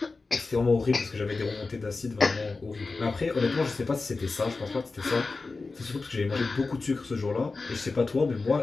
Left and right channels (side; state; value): right; quieter; 3.9 dB